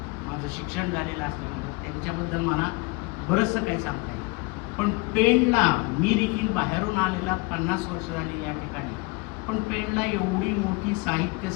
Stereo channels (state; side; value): quieter; right; 25.2 dB